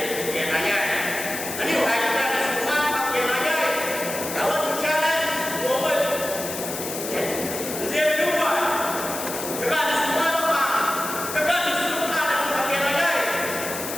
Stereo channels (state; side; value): noise; left; hiss, 7 dB below the sound